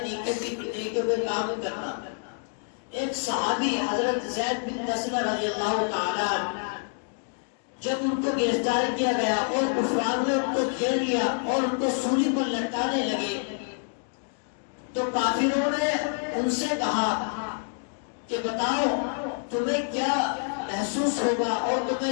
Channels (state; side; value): silent; right; 60 dB below the other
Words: نیکیوں پہ کام کرنا۔ ایک صحابی حضرت زید بن دسنہ رضی اللہ تعالیٰ عنہ، جب ان کو گرفتار کیا گیا اور کفار نے ان کو گھیر لیا اور ان کو سولی پر لٹکانے لگے تو کافروں نے ان سے کہا کہ بتاؤ تمہیں کیا محسوس ہوگا اور تمہیں